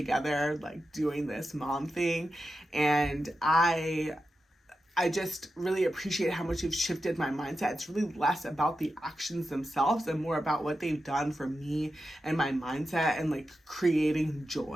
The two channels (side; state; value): both; normal; correlation 0.90